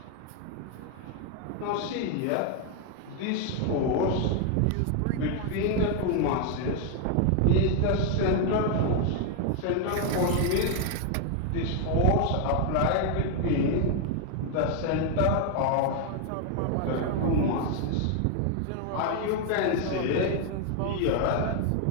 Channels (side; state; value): both; different; correlation 0.01